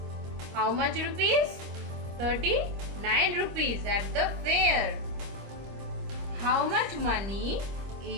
how much rupees? 39 rupees at the fair. How much money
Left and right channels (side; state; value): left; late; 25 ms